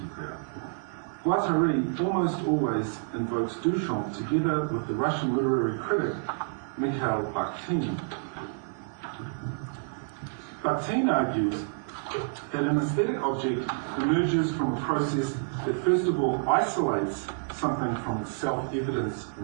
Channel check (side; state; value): left; silent; 59 dB below the other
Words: Guattari almost always invokes Duchamp together with the Russian literary critic Mikhail Bakhtin. Bakhtin argues that an aesthetic object emerges from a process that first of all isolates something from its self-evidence